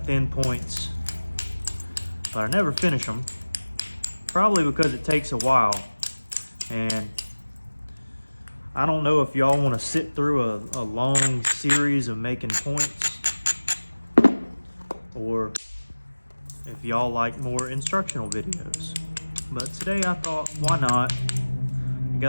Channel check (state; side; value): inverted; both; correlation -1.00